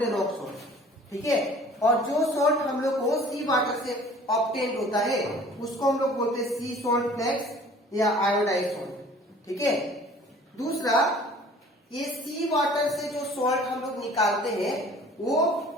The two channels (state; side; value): normal; both; correlation 0.50